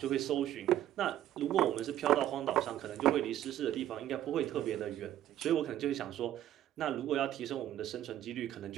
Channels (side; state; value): left; quieter; 12.3 dB